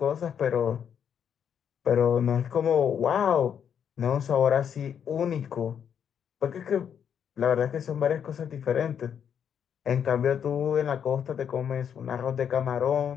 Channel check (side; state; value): right; quieter; 8.2 dB